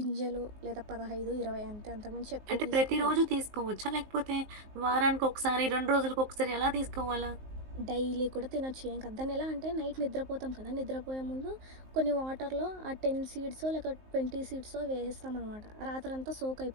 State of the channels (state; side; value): late; left; 19 ms